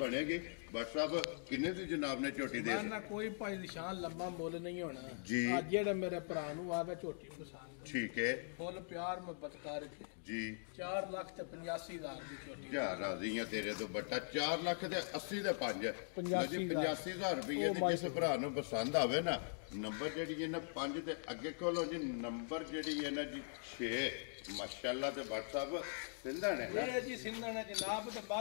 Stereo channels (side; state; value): right; silent; digital silence